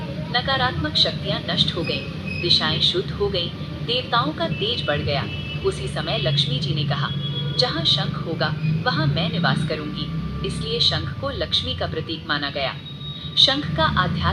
नकारात्मक शक्तियां नष्ट हो गईं, दिशाएं शुद्ध हो गईं, देवताओं का तेज बढ़ गया। उसी समय लक्ष्मी जी ने कहा, जहाँ शंख होगा वहाँ मैं निवास करूंगी। इसलिए शंख को लक्ष्मी का प्रतीक माना गया। शंख का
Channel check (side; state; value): both; identical; correlation 1.00